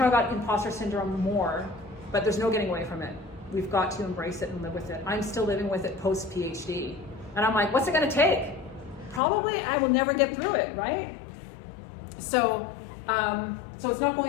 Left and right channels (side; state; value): right; drops out; at 9.2 s